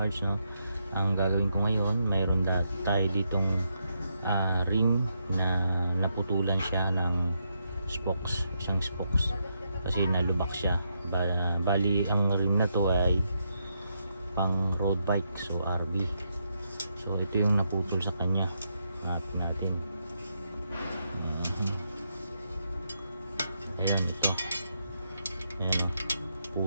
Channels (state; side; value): inverted; both; correlation -0.80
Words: parts, no? Ang gagawin ko ngayon, mayroon tayo ditong rim na naputulan siya ng spokes, isang spokes kasi nalubak siya. Bali ang rim na to ay pang road bike, so RB. So ito yung naputol sa kanya. Hanapin natin. Ayan, ito. Ayan, oh,